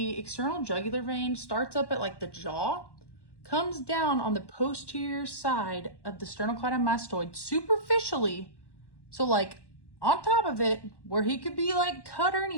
external jugular vein starts up at like the jaw, comes down on the posterior side of the sternocleidomastoid superficially. So like on top of it, where he could be like cut or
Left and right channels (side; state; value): right; late; 1.1 ms